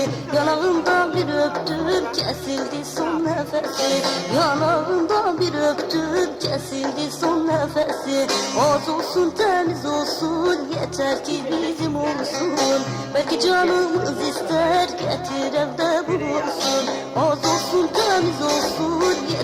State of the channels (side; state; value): both; identical; correlation 1.00